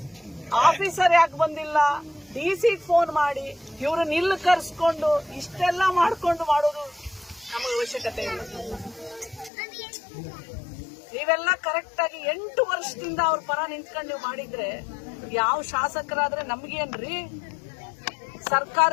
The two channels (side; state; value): right; drops out; at 9.5 s